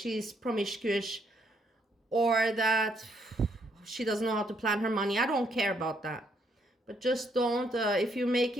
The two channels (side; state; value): both; normal; correlation 0.72